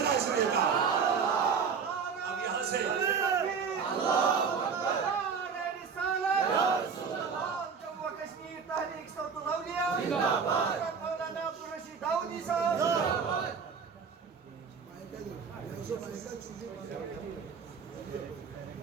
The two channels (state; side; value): quieter; left; 6.0 dB